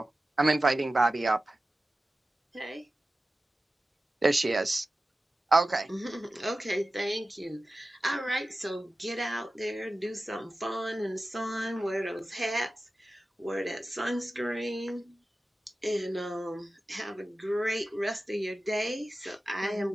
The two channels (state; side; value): normal; both; correlation 0.95